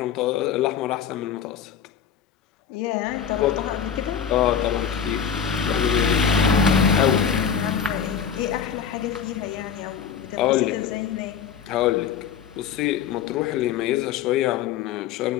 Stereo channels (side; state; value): right; quieter; 7.8 dB